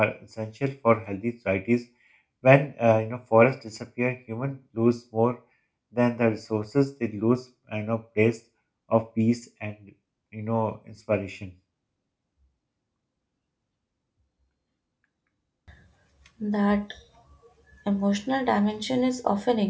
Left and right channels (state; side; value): identical; both; correlation 1.00